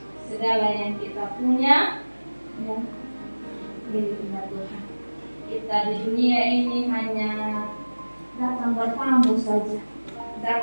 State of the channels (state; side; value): inverted; both; correlation -1.00